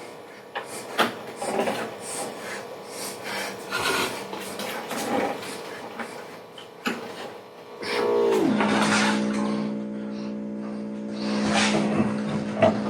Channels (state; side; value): identical; both; correlation 1.00